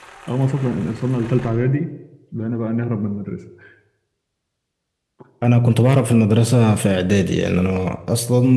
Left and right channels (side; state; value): both; identical; correlation 1.00